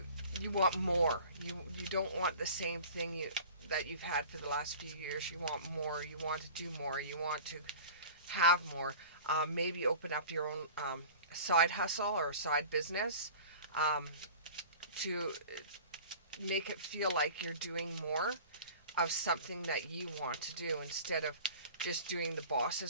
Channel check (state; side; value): inverted; both; correlation -0.41